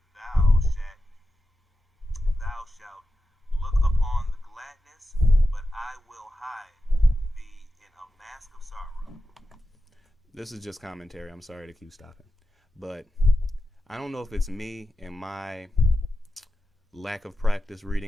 thou shalt look upon the gladness, but I will hide thee in a mask of sorrow. This is just commentary. I'm sorry to keep stopping. But I don't know if it's me and my lack of practice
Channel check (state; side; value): normal; both; correlation 0.91